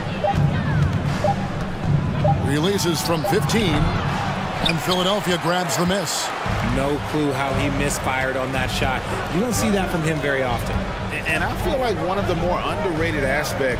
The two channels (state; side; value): identical; both; correlation 1.00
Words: Releases from 15, and Philadelphia grabs the miss. No clue how he misfired on that shot. You don't see that from him very often. And I feel like one of the more underrated